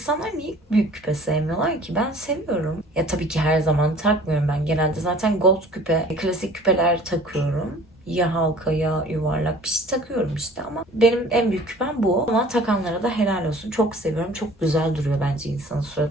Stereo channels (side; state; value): both; normal; correlation 0.49